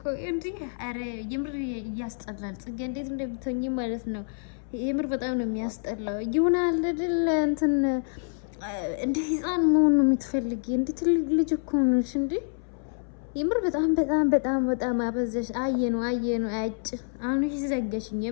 እንዲህ ኧረ የምር እያስጠላል። ጽጌ እንዴት እንደምትሆኚ ማለት ነው። የምር በጣም ነው የሚያስጠላው። ይሆናል አይደል እንትን እንደ ህፃን መሆን ነው የምትፈልጊ። እንደ ትልቅ ልጅ እኮ ነሽ እንዴ! የምር በጣም አበዛሽ። አየነው አጭ አሁን ዘገሽኝ።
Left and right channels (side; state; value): right; silent; 60 dB below the other